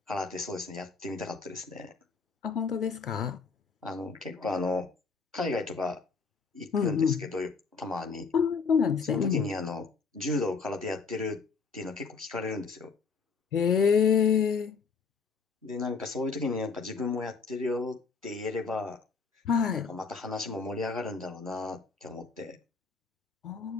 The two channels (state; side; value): quieter; right; 5.2 dB